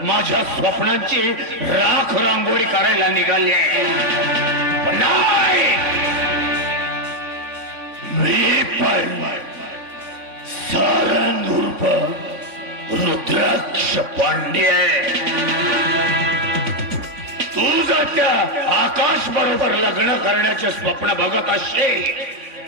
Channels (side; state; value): left; late; 3.5 ms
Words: माझ्या स्वप्नांची राख रांगोळी करायला निघाली पण नाही मी पण सारंग उर्फ रुद्राक्ष पांडे तू जर त्या आकाश बरोबर लग्न करण्याचे स्वप्न बघत असशील